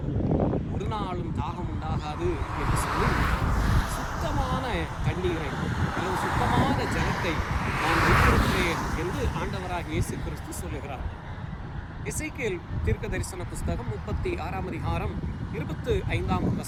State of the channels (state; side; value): identical; both; correlation 1.00